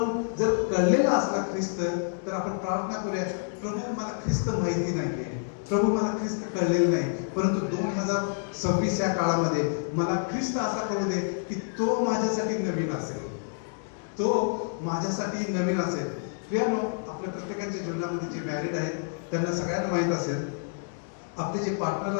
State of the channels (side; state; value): right; silent; digital silence